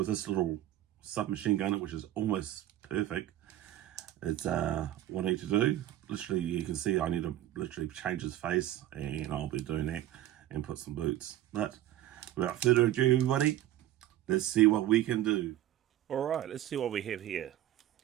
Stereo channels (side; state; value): left; quieter; 13.4 dB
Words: this little submachine gunner, which is almost perfect, it's what I need to do. Literally, you can see I need to literally change his face, and I'll be doing that and put some boots. But without further ado, everybody, let's see what we can do. Alright, let's see what we have here.